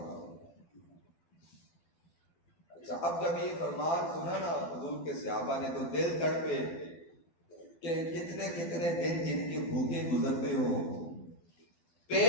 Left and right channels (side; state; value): right; late; 12 ms